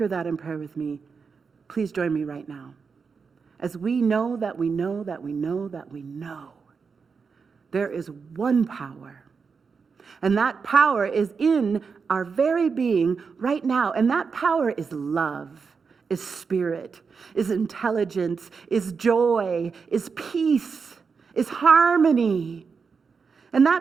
that in prayer with me, please join me right now. As we know that we know that we know that we know, there is one power. And that power is in our very being right now. And that power is love, is spirit, is intelligence, is joy, is peace, is harmony. And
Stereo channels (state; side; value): quieter; left; 5.4 dB